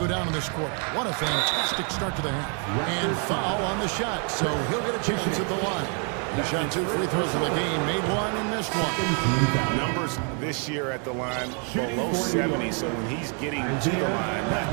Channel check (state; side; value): quieter; left; 39.8 dB